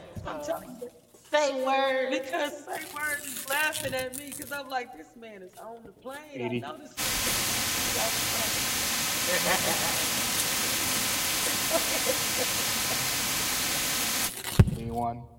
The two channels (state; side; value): identical; both; correlation 1.00